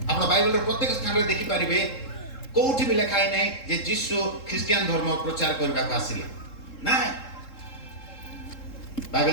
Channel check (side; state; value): right; late; 3.7 ms